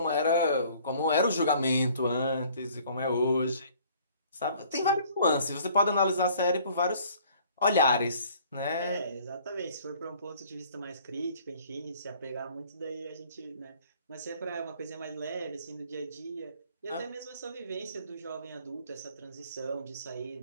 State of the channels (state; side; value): inverted; both; correlation -0.55